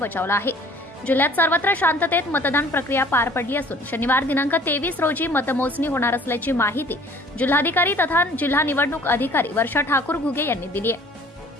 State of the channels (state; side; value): normal; both; correlation 0.52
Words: आहे। जिल्ह्यात सर्वत्र शांततेत मतदान प्रक्रिया पार पडली असून शनिवार दिनांक 23 रोजी मतमोजणी होणार असल्याची माहिती जिल्हाधिकारी तथा जिल्हा निवडणूक अधिकारी वर्षा ठाकूर घुगे यांनी दिली आहे।